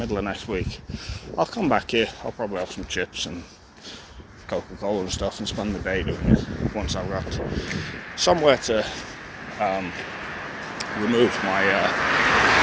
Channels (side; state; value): both; identical; correlation 1.00